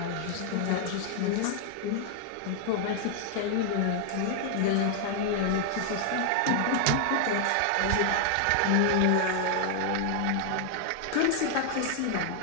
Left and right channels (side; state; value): both; different; correlation 0.00